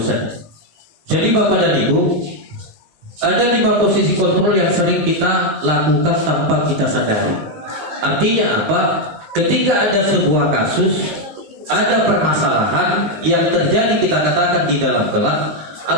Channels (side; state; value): left; late; 19 ms